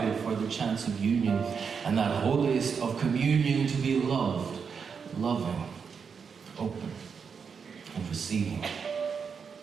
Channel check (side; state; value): left; quieter; 6.2 dB